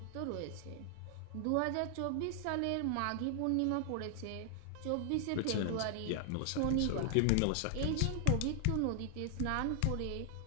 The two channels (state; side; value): different; both; correlation 0.00